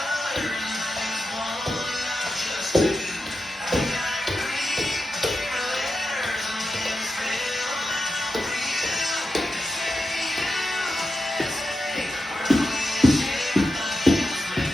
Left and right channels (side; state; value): both; normal; correlation 0.88